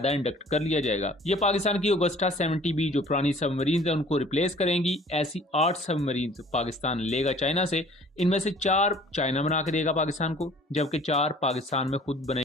इंडक्ट कर लिया जाएगा। ये पाकिस्तान की ऑगस्टा 70B जो पुरानी सबमरीन है उनको रिप्लेस करेंगी। ऐसी 8 सबमरीन पाकिस्तान लेगा चाइना से। इनमें से 4 चाइना बना के देगा पाकिस्तान को, जबकि 4 पाकिस्तान में खुद बने,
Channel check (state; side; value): normal; both; correlation 0.52